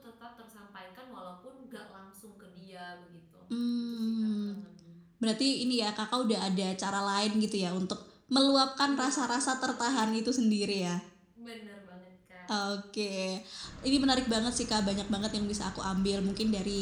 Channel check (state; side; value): identical; both; correlation 1.00